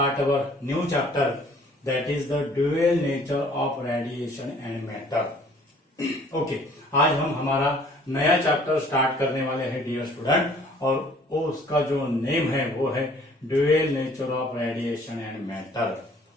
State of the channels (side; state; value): both; normal; correlation 0.55